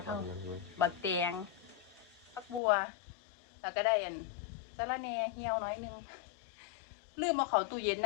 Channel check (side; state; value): right; drops out; at 2.6 s